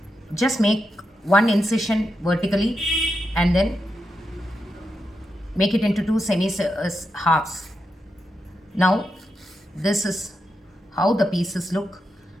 just make one incision vertically and then make it into two semi halves. Now this is how the pieces look,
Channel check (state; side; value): normal; both; correlation 0.86